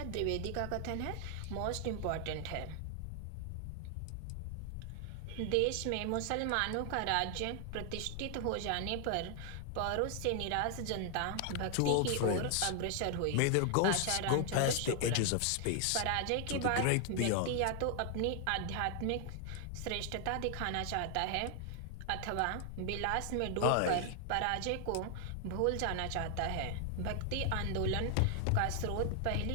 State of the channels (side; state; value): both; different; correlation 0.00